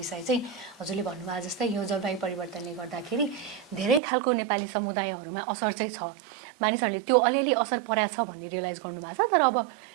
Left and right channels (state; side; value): drops out; left; at 4.0 s